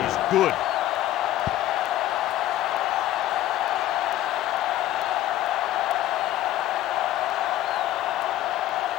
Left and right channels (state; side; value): quieter; right; 13.9 dB